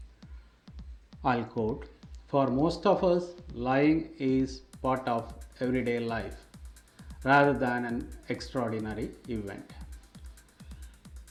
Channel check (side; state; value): both; identical; correlation 1.00